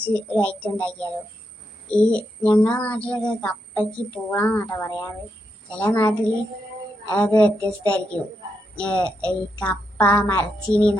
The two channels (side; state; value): both; normal; correlation 0.83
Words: ഒരു ഐറ്റം ഉണ്ടാക്കിയാലോ. ഞങ്ങളുടെ നാട്ടിലൊക്കെ കപ്പയ്ക്ക് പൂളാന്നാട്ടോ പറയാറ്. ചില നാട്ടിൽ അത് വ്യത്യസ്തമായിരിക്കും. ഈ കപ്പ മരച്ചീനി